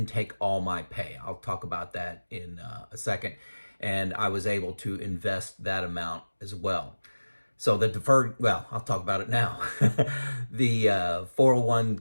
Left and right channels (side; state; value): both; inverted; correlation -1.00